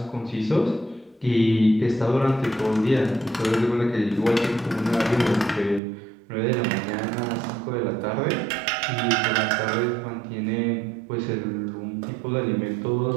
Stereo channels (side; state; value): left; drops out; at 5.8 s